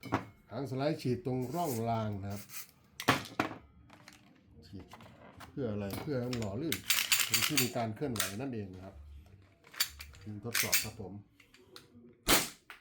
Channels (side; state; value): both; identical; correlation 1.00